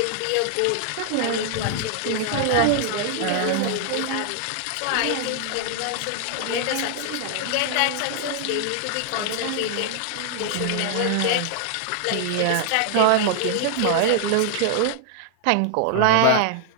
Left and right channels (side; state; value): both; different; correlation 0.00